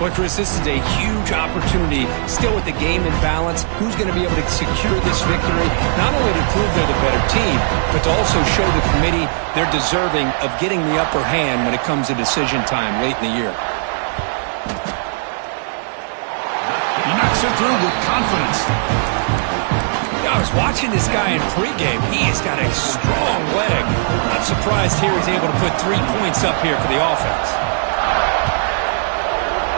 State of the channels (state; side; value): silent; left; digital silence